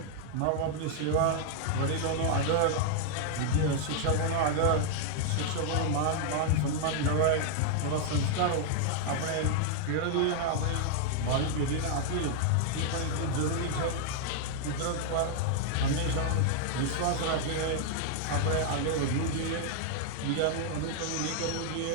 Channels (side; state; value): both; different; correlation 0.00